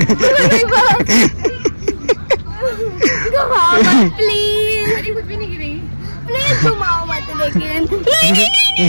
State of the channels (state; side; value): inverted; both; correlation -1.00